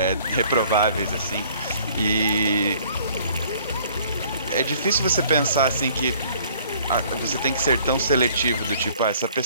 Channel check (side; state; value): both; inverted; correlation -0.56